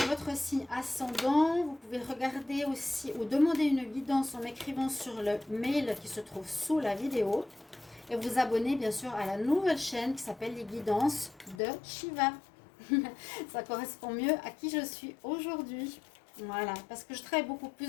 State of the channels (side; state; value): right; drops out; at 11.6 s